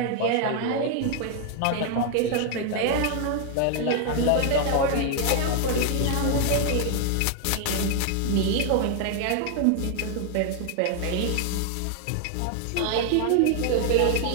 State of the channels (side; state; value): both; different; correlation 0.00